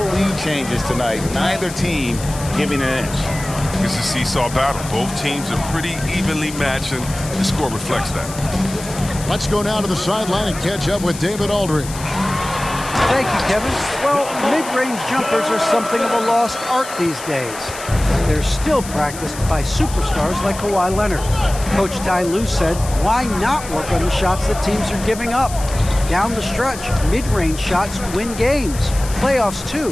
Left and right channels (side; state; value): left; noise; hiss, 13 dB below the sound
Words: lead changes tonight. Neither team giving an inch. It's a seesaw battle. Both teams are pretty evenly matched, and the score reflects that. Let's go now to the sideline and catch up with David Aldridge. Thank you, Kevin. Well, mid-range jumpers are something of a lost art these days. They're still practiced by superstars like Kawhi Leonard. Coach Ty Lue said, why not work on the shots that teams are giving up? Down the stretch, mid-range shots win games. Playoffs, too.